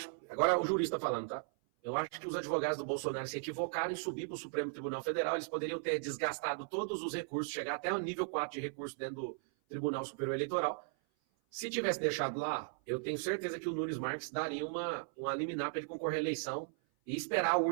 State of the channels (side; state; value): left; silent; 53 dB below the other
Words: Agora o jurista falando, tá? Eu acho que os advogados do Bolsonaro se equivocaram em subir para o Supremo Tribunal Federal. Eles poderiam ter desgastado todos os recursos, chegar até o nível 4 de recurso dentro do Tribunal Superior Eleitoral. Se tivesse deixado lá, eu tenho certeza que o Nunes Marques daria uma liminar para ele concorrer à eleição e esperar a